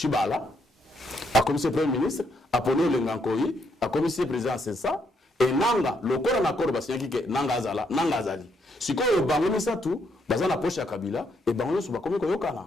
a commissaire premier ministre a poni le Ngankoyi a commissaire président c'est ça et nanga le corps en accord basiaki que nanga azali siko bango ça tout bazana poche ya Kabila et bango so ba komi ko yokana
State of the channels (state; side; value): normal; both; correlation 0.75